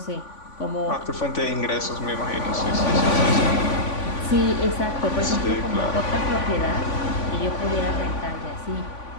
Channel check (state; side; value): late; right; 3.5 ms